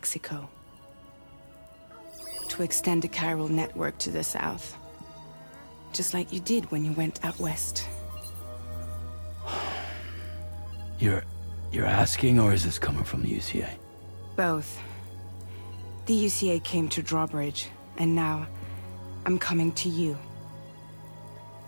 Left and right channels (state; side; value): inverted; both; correlation -1.00